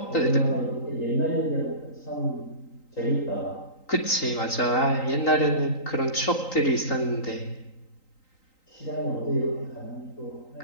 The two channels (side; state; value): right; late; 3.9 ms